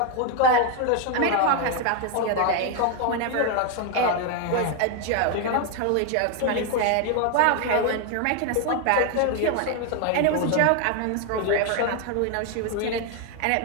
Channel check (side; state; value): both; different; correlation 0.01